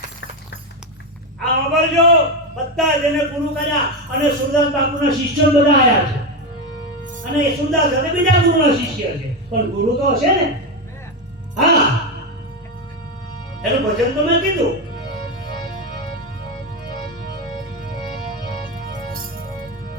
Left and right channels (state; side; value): normal; both; correlation 0.12